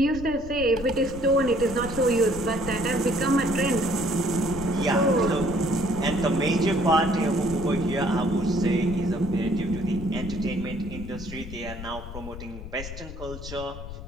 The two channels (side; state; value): left; noise; rumble, 11 dB below the sound